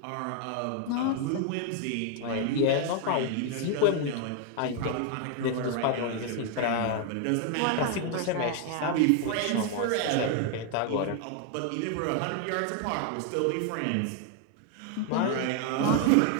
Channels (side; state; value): both; different; correlation 0.00